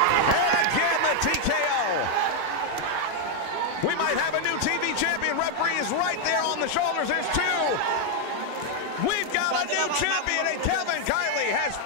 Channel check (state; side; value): different; both; correlation 0.00